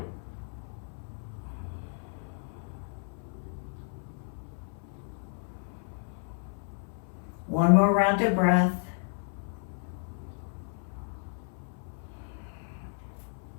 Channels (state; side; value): silent; right; 56 dB below the other